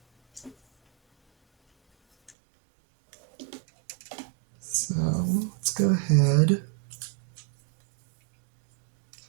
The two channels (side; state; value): left; drops out; at 2.4 s